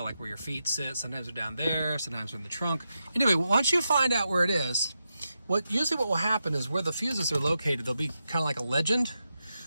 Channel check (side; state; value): both; inverted; correlation -0.88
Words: like where your feet sit, sometimes they're down there, sometimes they're in the trunk. Anyway, once you find out where it is, usually what will happen is where the fuses are located, they'll be kind of like a legend.